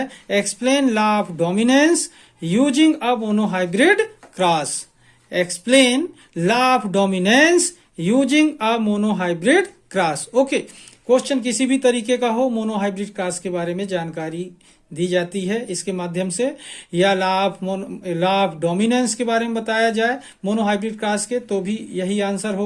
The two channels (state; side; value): identical; both; correlation 1.00